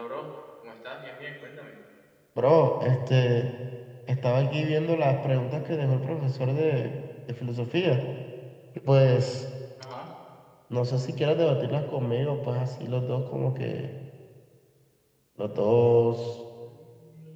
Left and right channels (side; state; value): both; identical; correlation 1.00